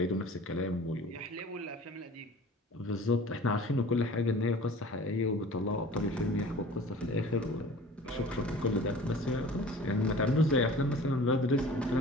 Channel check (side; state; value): both; normal; correlation 0.44